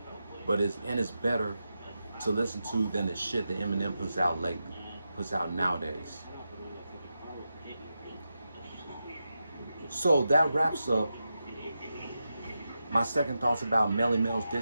but it's better to listen to than the shit that Eminem puts out nowadays. So that wraps up my second thoughts about Melle Mel's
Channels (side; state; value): both; inverted; correlation -0.89